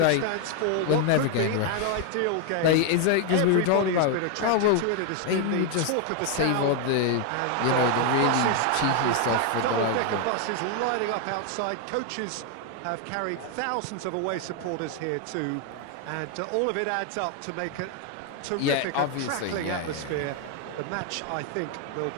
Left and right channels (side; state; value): both; different; correlation 0.01